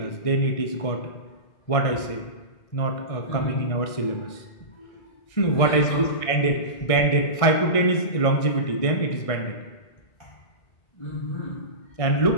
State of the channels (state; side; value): late; right; 1.6 ms